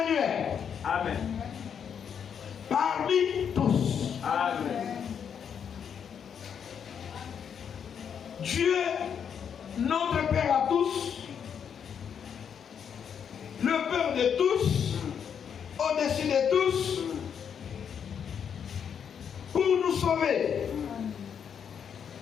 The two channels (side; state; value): right; quieter; 7.7 dB